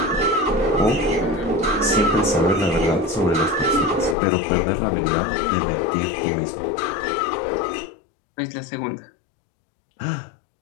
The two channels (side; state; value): right; drops out; at 4.2 s